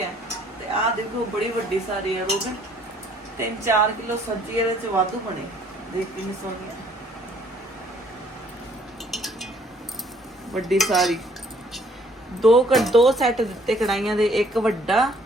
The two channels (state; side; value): normal; both; correlation 0.61